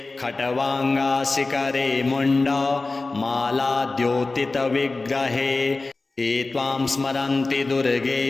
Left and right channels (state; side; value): quieter; right; 3.5 dB